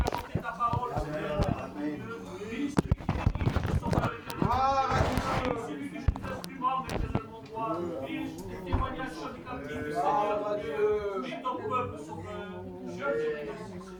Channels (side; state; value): both; identical; correlation 1.00